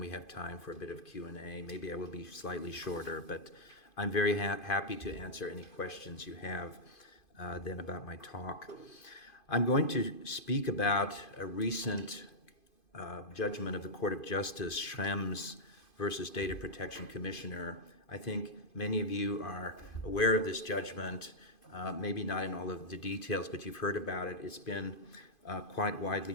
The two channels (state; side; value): late; right; 2.5 ms